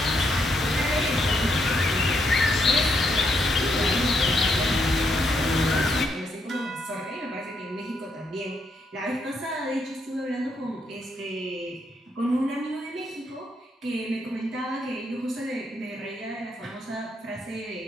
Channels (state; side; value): normal; both; correlation 0.77